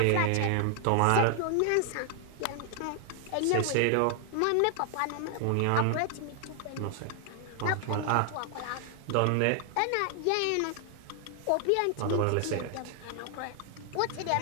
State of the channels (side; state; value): both; different; correlation 0.00